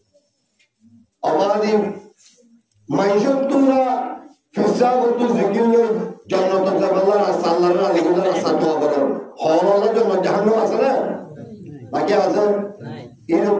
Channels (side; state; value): both; identical; correlation 1.00